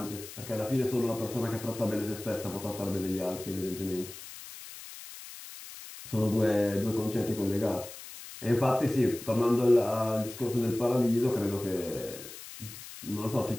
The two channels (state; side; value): noise; left; hiss, 14 dB below the sound